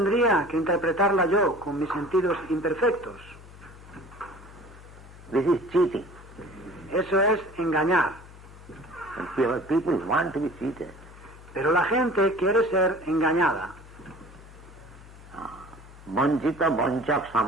que interpretarla yo con mis sentidos imperfectos? This is cheating. Eso es engañar. And people want to be cheated. Pero la gente quiere ser engañada. Vanchita vanchak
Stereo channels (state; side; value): noise; left; hum, 19 dB below the sound